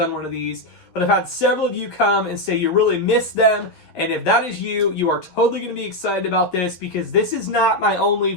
one of these, but I've had several of you come and say you really miss them. And if that is you, you are totally going to be excited about this because this is not my only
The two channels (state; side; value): late; right; 12 ms